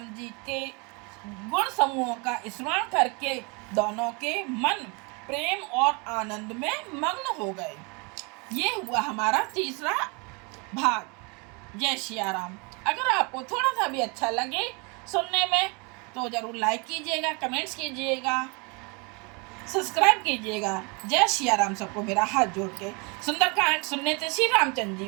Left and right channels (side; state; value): left; quieter; 31.2 dB